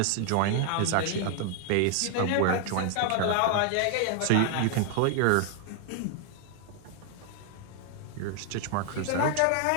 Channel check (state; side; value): different; both; correlation 0.00